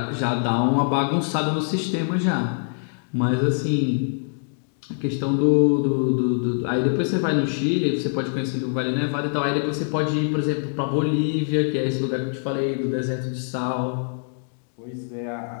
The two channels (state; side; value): silent; right; digital silence